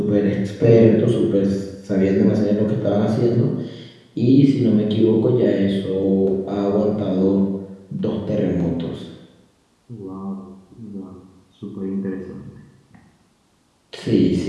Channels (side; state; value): both; identical; correlation 1.00